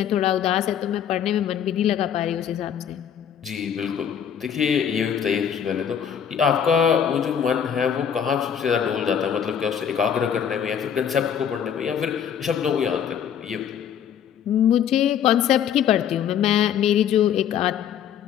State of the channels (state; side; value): quieter; right; 8.6 dB